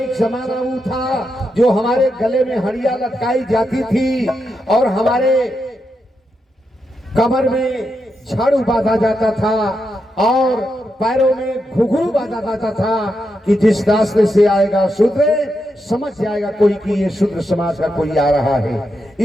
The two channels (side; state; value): both; normal; correlation 0.85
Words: जमाना वो था जो हमारे गले में हड़िया लटकाई जाती थी और हमारे कमर में झाड़ू बांधा जाता था और पैरों में घुघरू बांधा जाता था कि जिस रास्ते से आएगा शूद्र समझ जाएगा कोई कि ये शूद्र समाज का कोई आ रहा है।